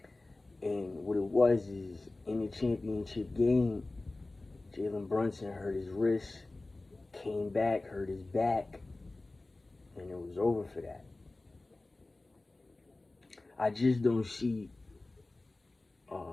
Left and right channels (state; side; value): quieter; right; 3.0 dB